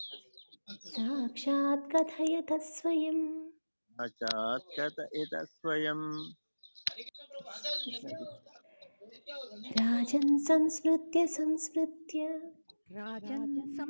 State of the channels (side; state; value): both; inverted; correlation -1.00